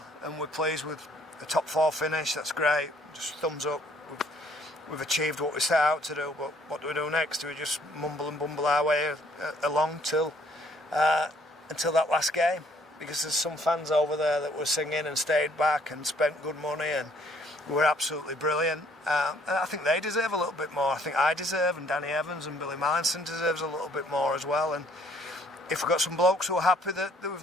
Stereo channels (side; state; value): both; normal; correlation 0.62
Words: and we're pleased with a top 4 finish. That's great. Just thumbs up. We've achieved what we set out to do, but what do we do next? Do we just mumble and bumble our way along until that last game? Because there's some fans over there that were singing and stayed back and spent good money and were absolutely brilliant. And I think they deserve a little bit more. I think I deserve, and Danny Evans and Billy Mallinson deserves a little bit more as well. And if we've got some blokes who are happy that